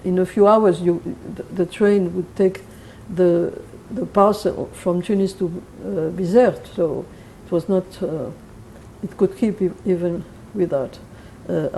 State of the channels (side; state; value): both; identical; correlation 1.00